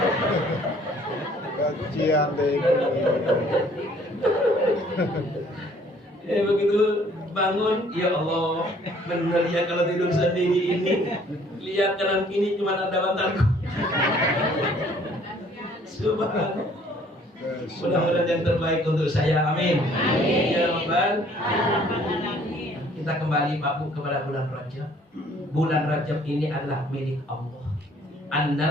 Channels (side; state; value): both; normal; correlation 0.59